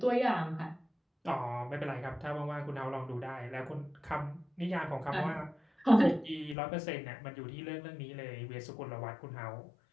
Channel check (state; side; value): drops out; right; at 6.6 s